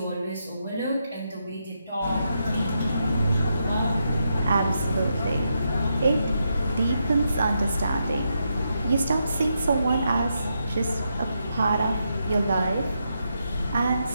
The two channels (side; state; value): both; inverted; correlation -0.83